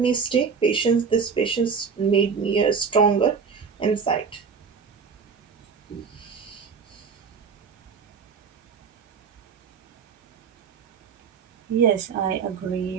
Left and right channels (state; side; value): quieter; left; 5.8 dB